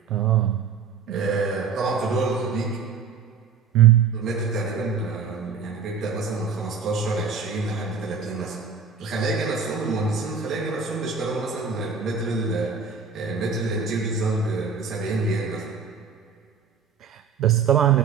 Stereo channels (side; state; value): left; quieter; 5.9 dB